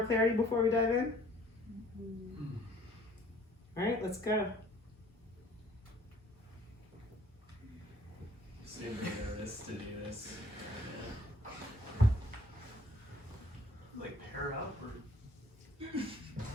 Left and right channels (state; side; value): normal; both; correlation 0.58